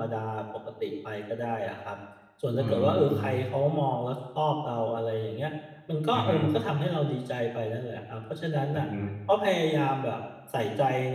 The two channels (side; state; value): both; identical; correlation 1.00